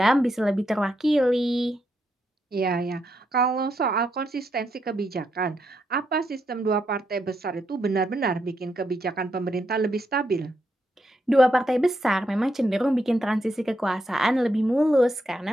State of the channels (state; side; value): normal; both; correlation 0.80